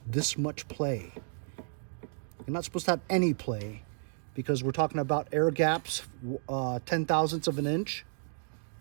this much play? You're not supposed to have any play because we're talking about air gaps, 10 thousandths of an inch.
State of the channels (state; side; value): silent; left; digital silence